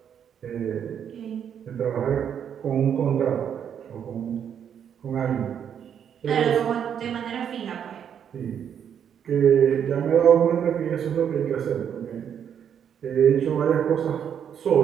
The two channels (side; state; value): left; quieter; 8.5 dB